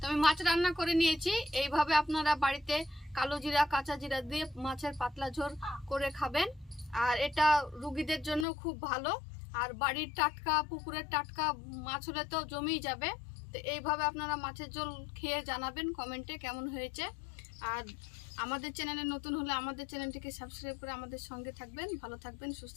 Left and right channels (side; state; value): right; drops out; at 8.5 s